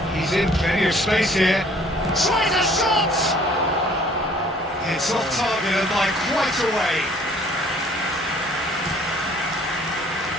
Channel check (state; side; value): normal; both; correlation 0.56